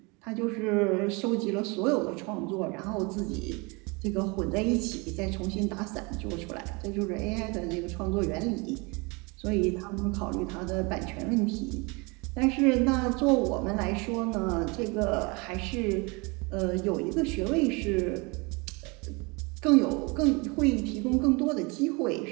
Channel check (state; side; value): quieter; left; 28.3 dB